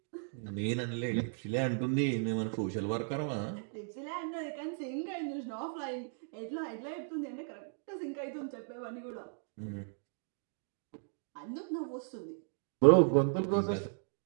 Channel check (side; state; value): left; silent; digital silence